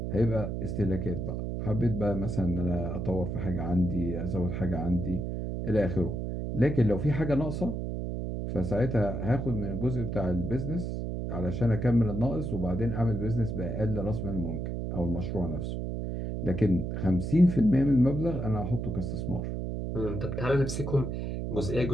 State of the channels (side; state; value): right; noise; hum, 3 dB below the sound